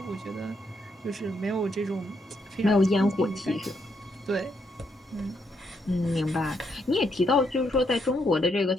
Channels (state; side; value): normal; both; correlation 0.77